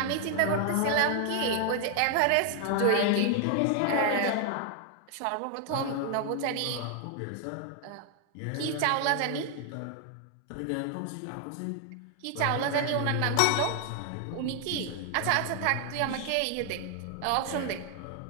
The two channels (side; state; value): both; different; correlation 0.00